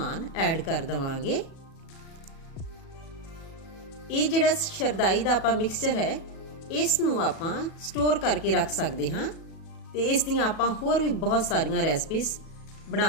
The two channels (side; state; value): right; late; 37 ms